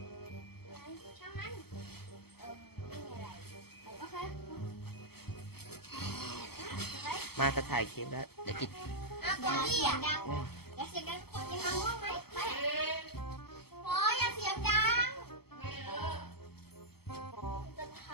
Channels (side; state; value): right; late; 0.96 ms